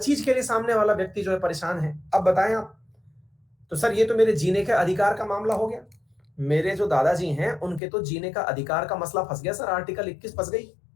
के लिए सामने वाला व्यक्ति जो है परेशान है। अब बताएं आप, तो सर ये तो मेरे जीने के अधिकार का मामला हो गया। मेरे जो दादाजी हैं उनके तो जीने का अधिकार का मसला फंस गया सर, आर्टिकल 21 फंस गई।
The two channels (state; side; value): drops out; right; at 7.8 s